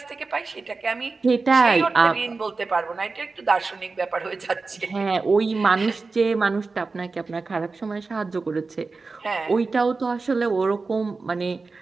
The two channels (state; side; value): quieter; left; 4.0 dB